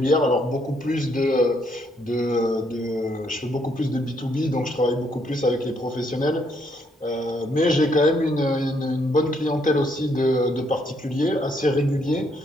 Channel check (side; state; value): both; normal; correlation 0.72